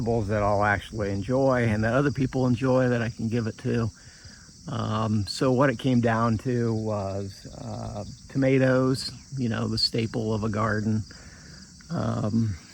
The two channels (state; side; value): identical; both; correlation 1.00